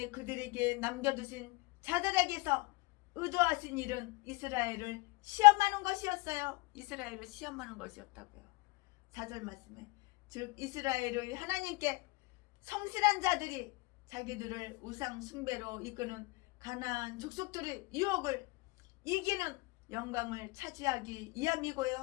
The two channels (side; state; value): right; quieter; 25.1 dB